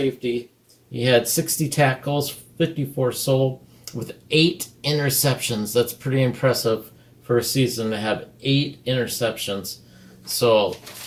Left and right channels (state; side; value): identical; both; correlation 1.00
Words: He had 60 tackles, 54 solo, with 8 interceptions. That's pretty impressive for a season to have 8 interceptions. So